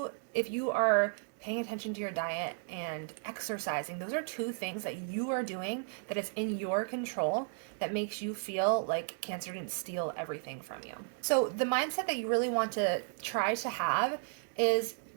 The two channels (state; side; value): silent; left; 55 dB below the other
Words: are paying attention to your diet and exercising, those are 2 things that you are doing that is in your control that makes you feel like cancer didn't steal everything from you. So the mindset that you really want to try to have is